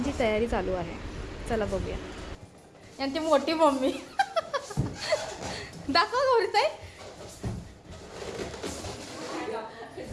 तयारी चालू आहे. चला बघूया. यांची मोठी मम्मी दाखवा गौरीताई.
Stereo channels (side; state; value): both; identical; correlation 1.00